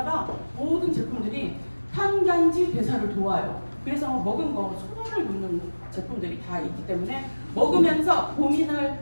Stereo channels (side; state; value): both; inverted; correlation -1.00